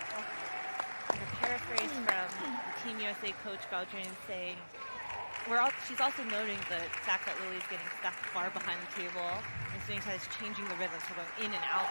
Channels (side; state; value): both; inverted; correlation -1.00